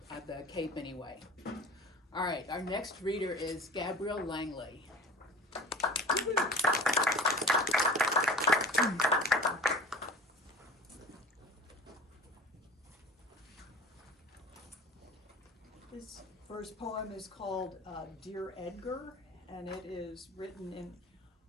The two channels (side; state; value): both; normal; correlation 0.39